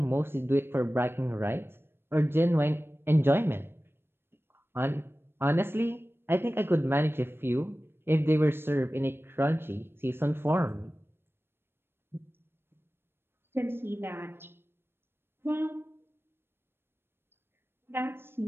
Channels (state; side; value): late; left; 0.11 ms